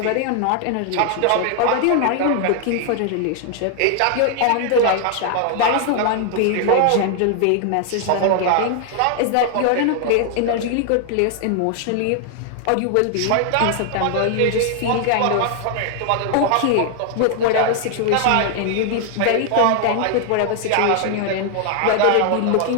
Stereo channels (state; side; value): different; both; correlation 0.00